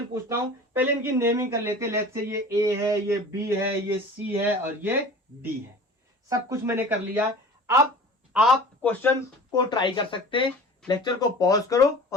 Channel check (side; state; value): both; normal; correlation 0.40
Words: पूछता हूं. पहले इनकी नेमिंग कर लेते हैं. लेट्स से ये A है, ये B है, ये C है और ये D है. सब कुछ मैंने कर लिया. अब आप क्वेश्चन को ट्राई कर सकते हैं. लेक्चर को पॉज करो